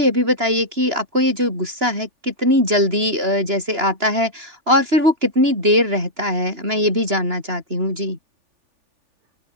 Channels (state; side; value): late; left; 2.9 ms